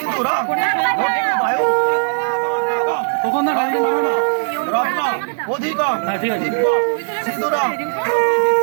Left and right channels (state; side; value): silent; left; 56 dB below the other